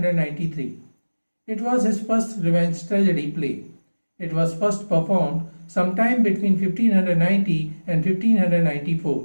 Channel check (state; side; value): inverted; both; correlation -1.00